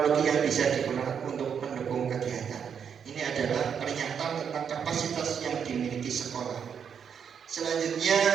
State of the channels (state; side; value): quieter; left; 7.4 dB